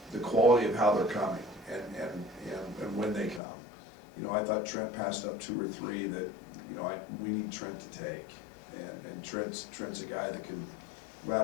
quality of how they're coming and when they come. I thought Trent passed up 2 or 3 that, we need Trent to take. And Trent's a guy that can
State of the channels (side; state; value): right; drops out; at 3.4 s